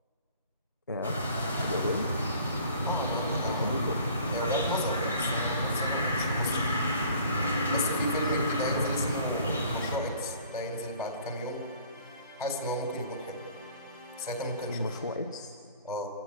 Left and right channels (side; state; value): both; inverted; correlation -0.52